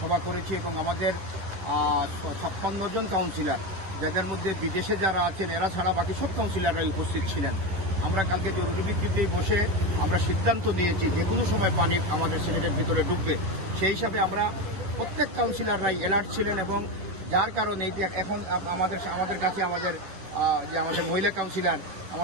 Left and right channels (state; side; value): late; left; 11 ms